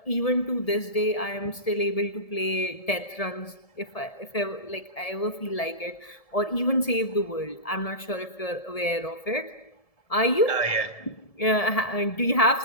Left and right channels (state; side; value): late; right; 1.7 ms